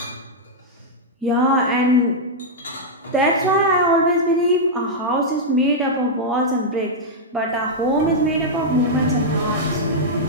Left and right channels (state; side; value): normal; both; correlation -0.06